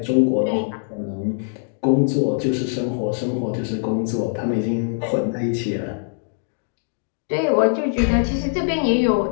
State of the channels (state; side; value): silent; right; digital silence